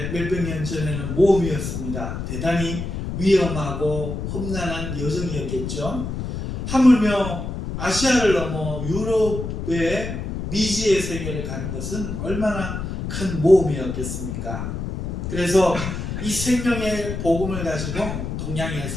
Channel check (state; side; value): noise; left; rumble, 5 dB below the sound